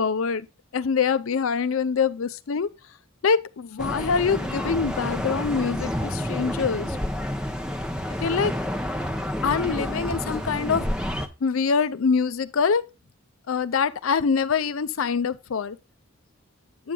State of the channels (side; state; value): right; quieter; 4.4 dB